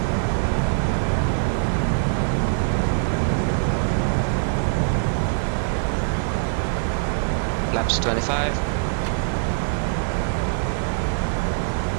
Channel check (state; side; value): silent; left; 63 dB below the other